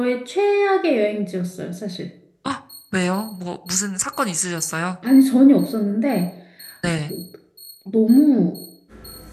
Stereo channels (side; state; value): both; identical; correlation 1.00